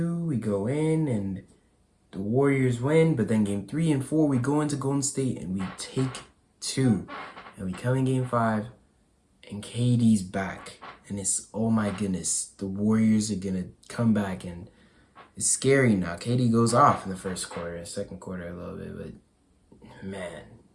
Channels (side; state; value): both; identical; correlation 1.00